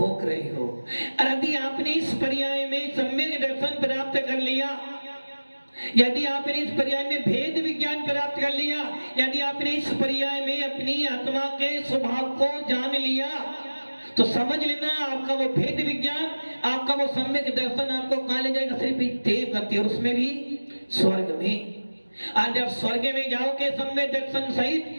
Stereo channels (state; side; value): inverted; both; correlation -1.00